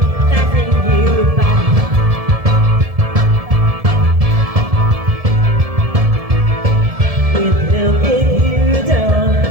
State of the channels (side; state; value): left; late; 1.7 ms